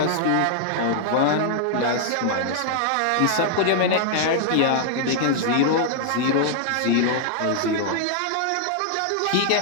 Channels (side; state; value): both; different; correlation -0.01